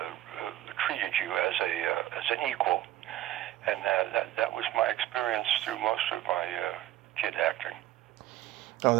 treated you as an equal, and that was my experience through most of my kid acting. Oh,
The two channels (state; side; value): quieter; left; 14.3 dB